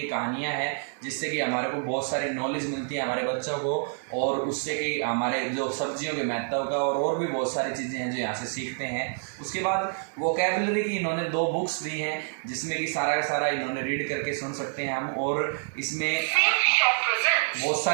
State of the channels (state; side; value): silent; left; 60 dB below the other